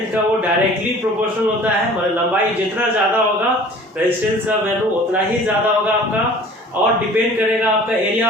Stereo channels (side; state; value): both; normal; correlation 0.47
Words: का वो डायरेक्टली प्रोपोर्शनल होता है, मतलब लंबाई जितना ज़्यादा होगा रेजिस्टेंस का वैल्यू उतना ही ज़्यादा होगा आपका, और डिपेंड करेगा आपका